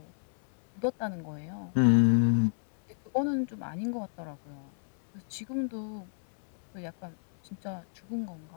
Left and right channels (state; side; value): silent; right; 57 dB below the other